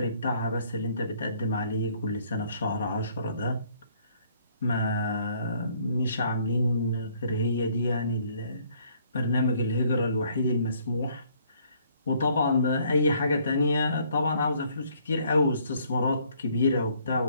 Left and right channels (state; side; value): inverted; both; correlation -0.64